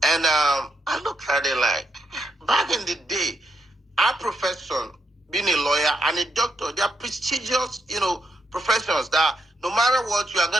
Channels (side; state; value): both; normal; correlation 0.80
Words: And I looked at it like, back in the day, our profession, being a lawyer and a doctor, they are prestigious, professions that no matter what, you are